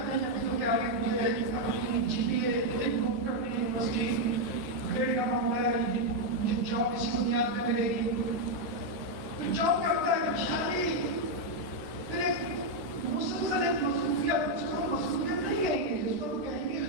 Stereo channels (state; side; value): late; left; 14 ms